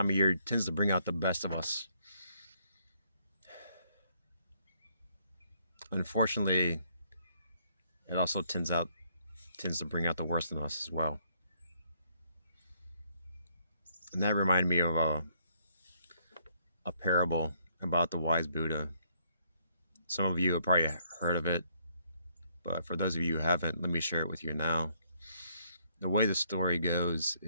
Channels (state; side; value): inverted; both; correlation -0.70